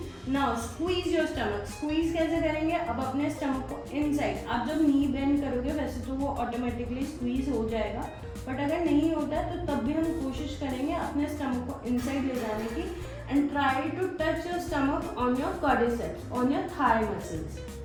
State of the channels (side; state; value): both; identical; correlation 1.00